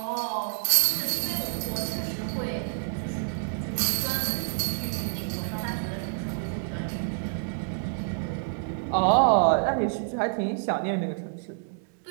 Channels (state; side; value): silent; left; digital silence